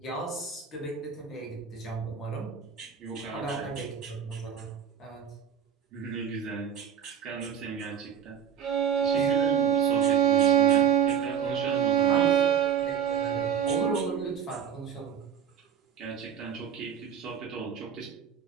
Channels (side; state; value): left; quieter; 8.2 dB